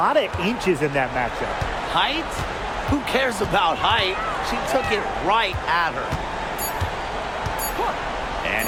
of inches in that matchup. Height? Who cares about height? She took it right at her. And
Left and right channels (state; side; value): identical; both; correlation 1.00